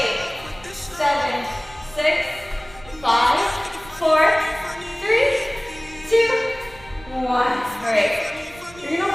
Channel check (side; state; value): right; noise; rumble, 22 dB below the sound